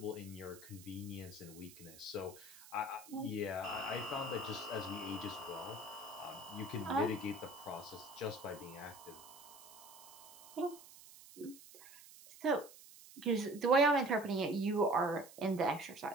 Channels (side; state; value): right; noise; hiss, 19 dB below the sound